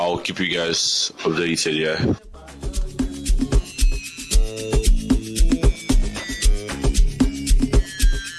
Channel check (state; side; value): identical; both; correlation 1.00